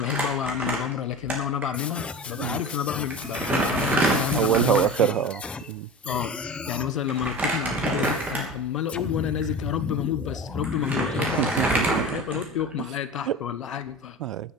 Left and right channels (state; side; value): normal; both; correlation 0.32